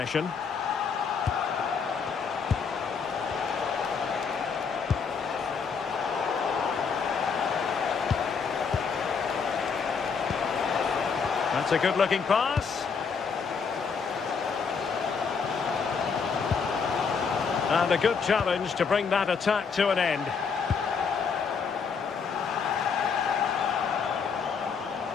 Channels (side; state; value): right; quieter; 5.8 dB